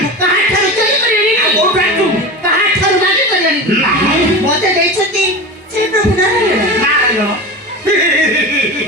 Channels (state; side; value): normal; both; correlation 0.28